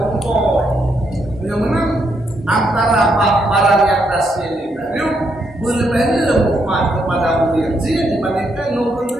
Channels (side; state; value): both; normal; correlation 0.77